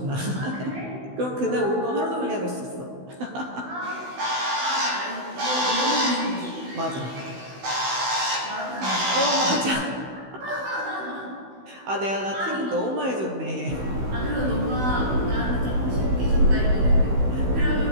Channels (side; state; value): left; late; 16 ms